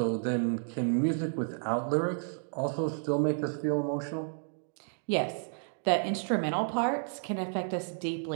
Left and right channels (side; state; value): left; silent; digital silence